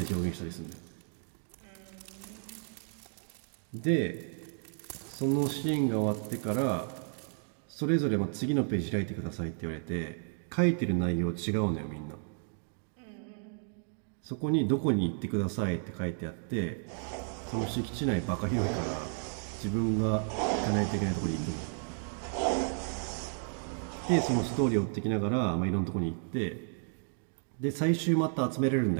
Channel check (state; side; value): silent; left; 56 dB below the other